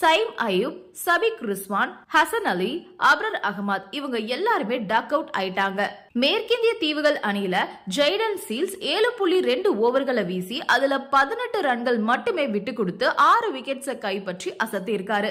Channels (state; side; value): identical; both; correlation 1.00